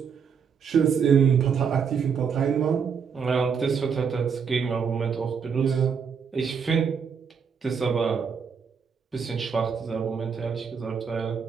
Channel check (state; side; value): quieter; left; 6.5 dB